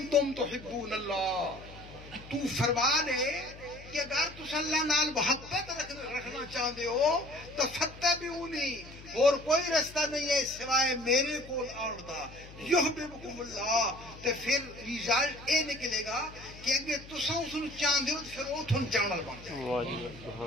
تحبون اللہ، تو فرما دے کہ اگر تس اللہ نال محبت رکھنا چاہتے ہو تو فتبعونی، اور کوئی رستہ نہیں ہے سوائے میرے کول آن دا، یحببکم اللہ، تو پھر ریزلٹ اے نکلے گا کہ اگر تساں اس نوں چاہتے ہو تو پھر وہ تھن چاہنا بن جائے۔ واہ جی واہ، سبحان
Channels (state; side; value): noise; left; hum, 17 dB below the sound